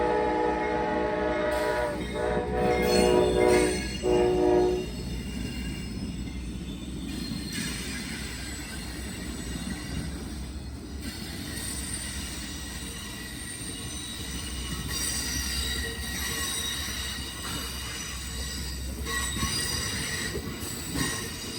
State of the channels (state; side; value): identical; both; correlation 1.00